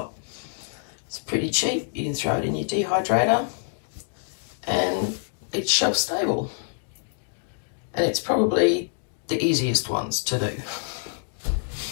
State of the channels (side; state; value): right; silent; digital silence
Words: It's pretty cheap. You can throw it in your dehydrator and it's shelf stable, and it's probably the easiest ones to do.